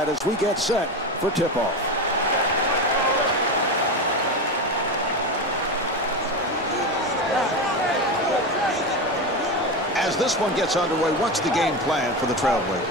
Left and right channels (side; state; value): both; normal; correlation 0.19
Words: as we get set for tip-off. As this one gets underway, what's the game plan for the